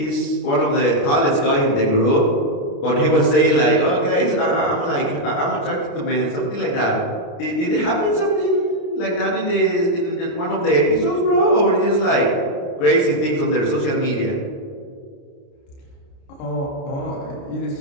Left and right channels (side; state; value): right; late; 29 ms